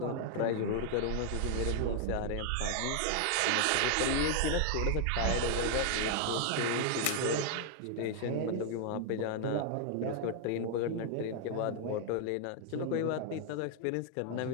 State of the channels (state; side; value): different; both; correlation 0.00